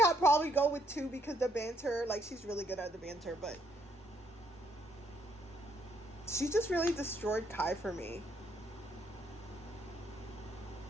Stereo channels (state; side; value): normal; both; correlation 0.70